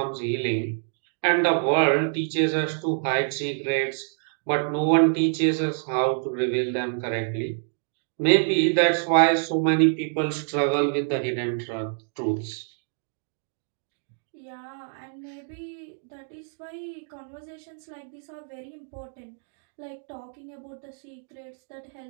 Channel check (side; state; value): left; silent; digital silence